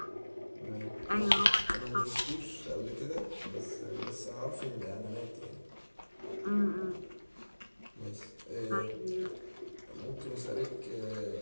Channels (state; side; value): inverted; both; correlation -1.00